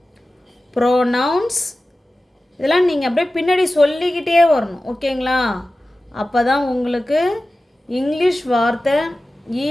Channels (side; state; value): both; normal; correlation 0.95